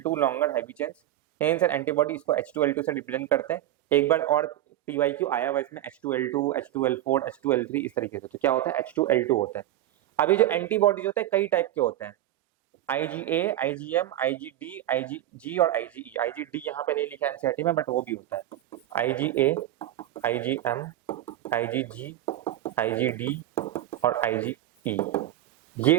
2 longer heavy chains. Hence an antibody इसको H2L2 से रिप्रेजेंट करते हैं। एक बार और PYQ आया हुआ इसमें H2L2, H2L4, H2L3 इस तरीके से। तो क्या होता है, H2L2 होता है। अभी जो एंटीबॉडीज होते हैं कई टाइप के होते हैं, IgA, IgM, IgD, IgG और IgE। IgD यहाँ पे नहीं लिखा है एनसीईआरटी में, बट वो भी होता है। IgA, IgM, IgG, IgD और IgE,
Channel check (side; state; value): left; quieter; 13.5 dB